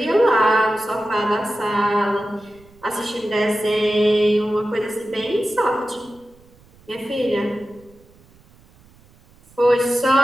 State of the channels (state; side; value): noise; right; rumble, 28 dB below the sound